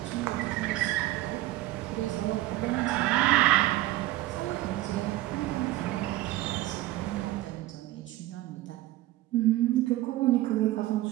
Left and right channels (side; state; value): left; quieter; 16.5 dB